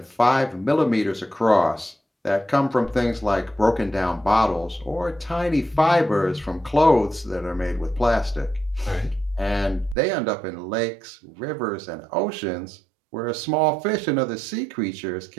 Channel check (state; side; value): drops out; left; at 10.0 s